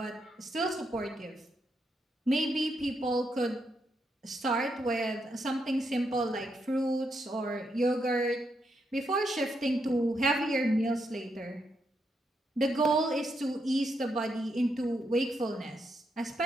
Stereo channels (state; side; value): normal; both; correlation 0.80